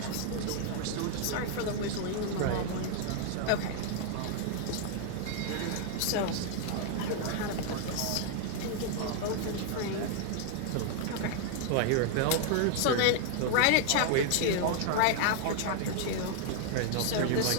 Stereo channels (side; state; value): both; different; correlation 0.00